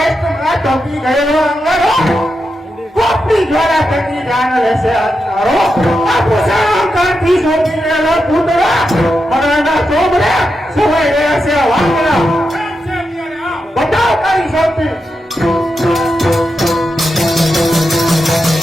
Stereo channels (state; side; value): normal; both; correlation 0.87